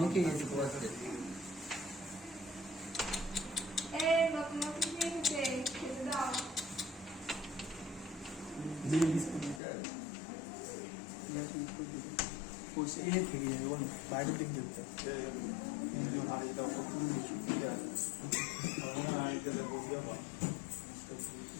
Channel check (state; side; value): drops out; right; at 9.6 s